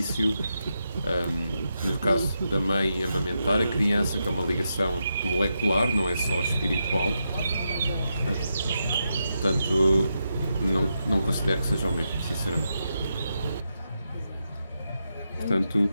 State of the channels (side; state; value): both; inverted; correlation -0.85